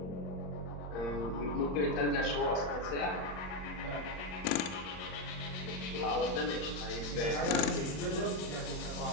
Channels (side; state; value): right; late; 35 ms